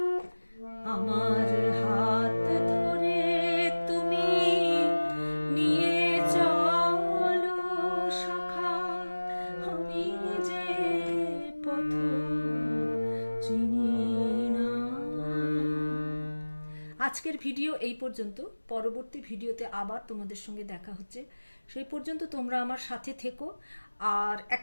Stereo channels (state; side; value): inverted; both; correlation -1.00